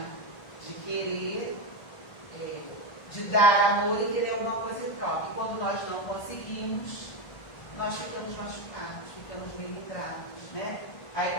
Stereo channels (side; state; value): right; late; 1.5 ms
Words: de querer, de dar amor e querer alguma coisa em troca. E quando nós não conseguimos, nós ficamos machucados, ficamos meio ingratos, né? Aí